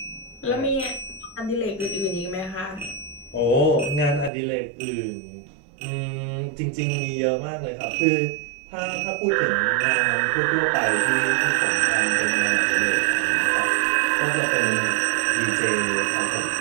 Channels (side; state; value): left; drops out; at 4.3 s